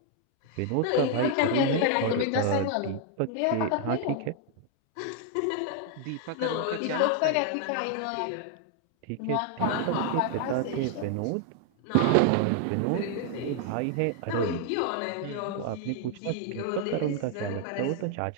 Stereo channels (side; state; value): both; different; correlation 0.00